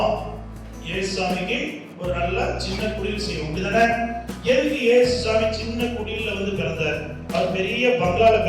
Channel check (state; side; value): identical; both; correlation 1.00